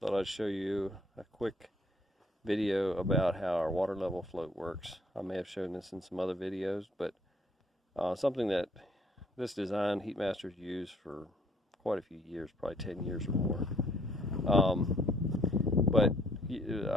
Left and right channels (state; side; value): normal; both; correlation 0.64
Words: I'd show you a quick video about how our water level float works. I may have shown this in some other videos, but something that this design HeatMaster's used for quite a few years, probably 10 years or more. But